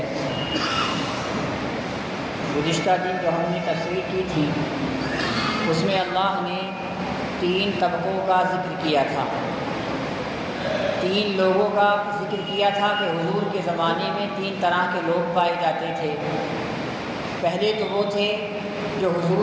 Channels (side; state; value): both; identical; correlation 1.00